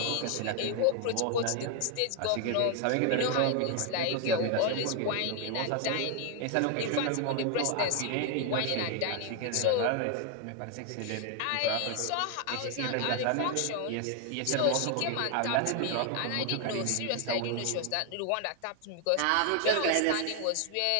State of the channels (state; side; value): different; both; correlation 0.01